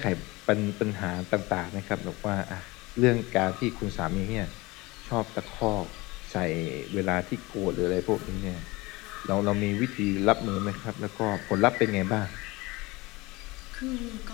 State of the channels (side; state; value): right; quieter; 22.4 dB